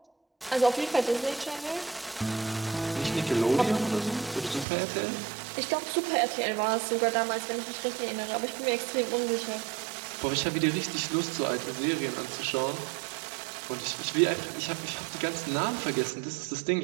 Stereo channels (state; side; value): drops out; left; at 4.7 s